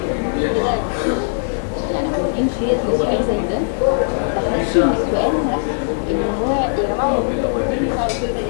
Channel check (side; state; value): right; silent; 63 dB below the other